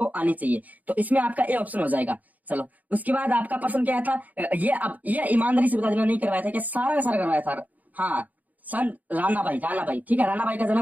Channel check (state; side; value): late; left; 0.077 ms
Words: आनी चाहिए। तो इसमें आपका ए ऑप्शन हो जाएगा। चलो, उसके बाद आपका प्रश्न क्या था? ये ईमानदारी से बता देना, नहीं करवाया था क्या? सारा का सारा करवाया था। हाँ, सन राणाबाई, ठीक है। राणाबाई का